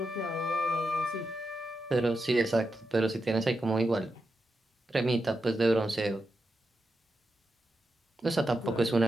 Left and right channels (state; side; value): normal; both; correlation 0.87